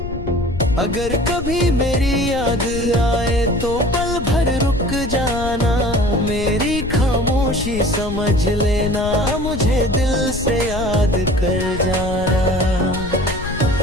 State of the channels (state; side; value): noise; left; rumble, 8 dB below the sound